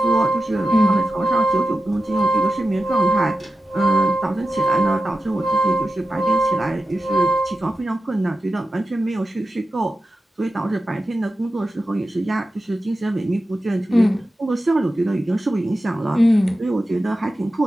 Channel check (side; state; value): both; normal; correlation 0.91